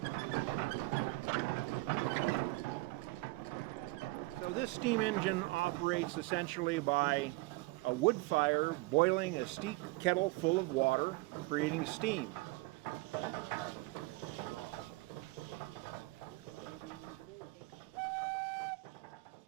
So this steam engine operates essentially by a wood fire boiling a steep kettle full of water, creating steam.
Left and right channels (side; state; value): left; quieter; 22.1 dB